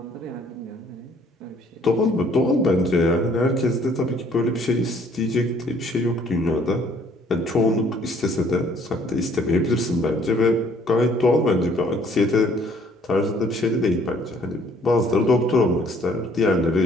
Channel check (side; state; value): both; normal; correlation 0.60